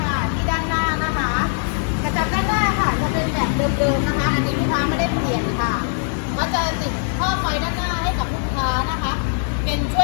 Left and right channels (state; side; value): silent; right; 65 dB below the other